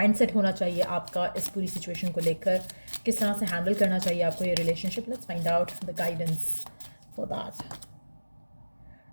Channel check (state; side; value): inverted; both; correlation -1.00